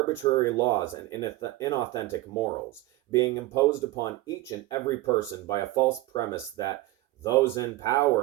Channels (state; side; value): quieter; left; 18.0 dB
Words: laws and inauthentic morals, being imposed upon each and every person by a false premise that those in